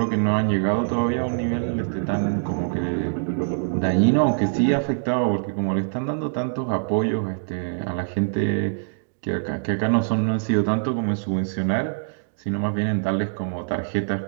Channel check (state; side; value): silent; left; digital silence